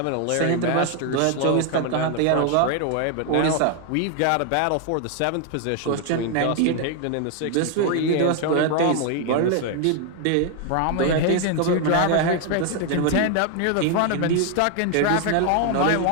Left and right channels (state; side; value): different; both; correlation 0.01